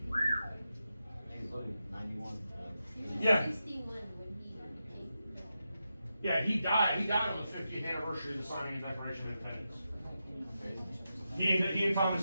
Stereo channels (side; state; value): both; inverted; correlation -0.88